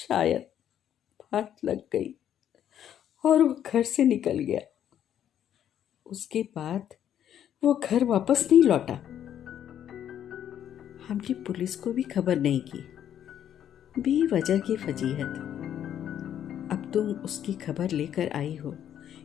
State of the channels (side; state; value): right; quieter; 10.1 dB